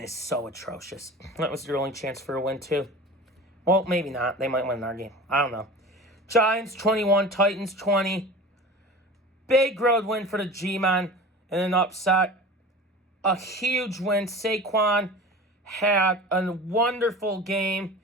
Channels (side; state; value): both; normal; correlation 0.36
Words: so atrocious. That was their only chance for a win, too. Well, maybe not. They might win our game. I don't know. Giants 21, Titans 20. Big road win for the G-Man and an upset. A huge win. Saquon had a wonderful game.